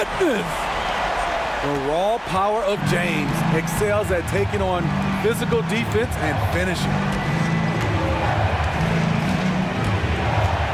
The raw power of James excels at taking on physical defense and finishing.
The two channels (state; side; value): identical; both; correlation 1.00